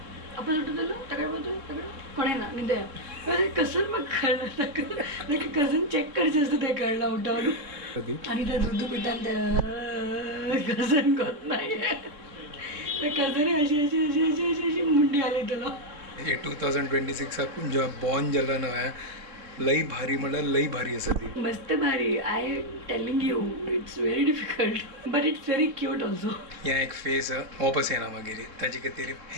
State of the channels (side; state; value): left; late; 3.6 ms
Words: आपण सुटतलो ताकडे पळयतलो ताकडे कोणें ना न्हिदया कसं म्हाका कळना ताका कजन चॅक करचें आसता तें कळना उठोवन आणि त्या दूध पितान त्या कजन कोत नाही त्या कजने अशी अशी अशी अशी अशी अशी मुंडी आली तुला हे 2026 जेव्हा बॉर्न जाला न्हय लई भारी म्हणल्यार लई भारी आसा ती मस्त भारी I telling you it's very difficult but it's very cute also ह्या एक फेस वापस येना मागीर ताचे खातीर